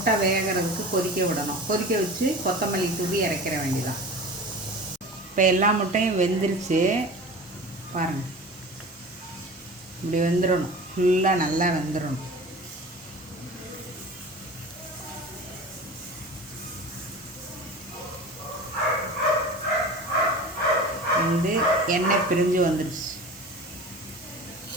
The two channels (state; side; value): normal; both; correlation 0.36